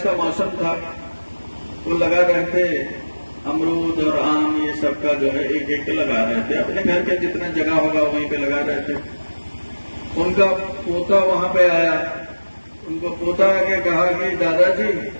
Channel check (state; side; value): inverted; both; correlation -1.00